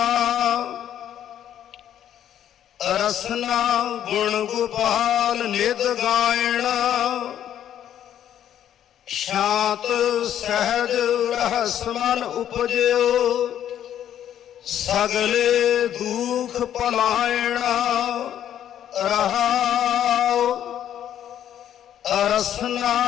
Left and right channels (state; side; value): quieter; right; 10.5 dB